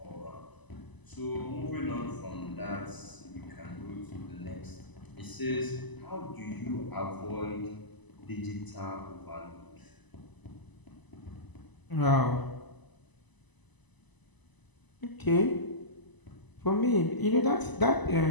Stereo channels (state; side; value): late; right; 1.0 ms